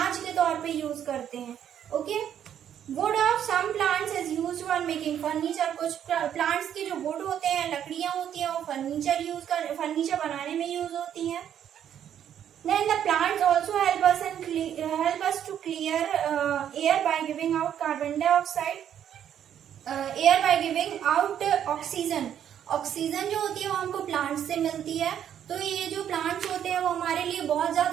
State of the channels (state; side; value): quieter; left; 9.7 dB